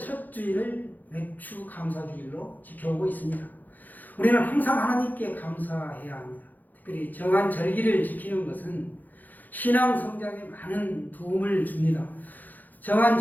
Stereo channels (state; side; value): late; right; 0.084 ms